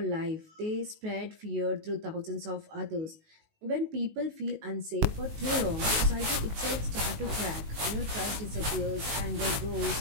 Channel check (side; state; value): left; late; 19 ms